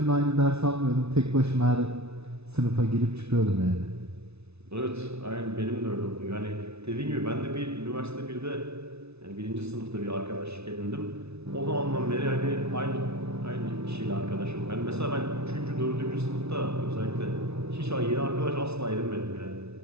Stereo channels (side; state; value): left; late; 0.80 ms